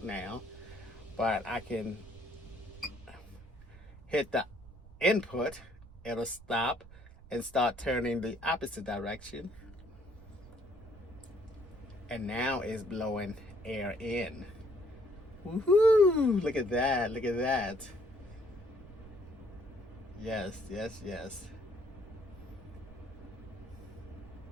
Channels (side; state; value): right; noise; rumble, 19 dB below the sound